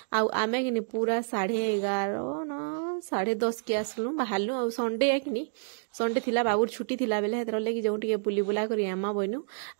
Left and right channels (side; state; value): left; silent; digital silence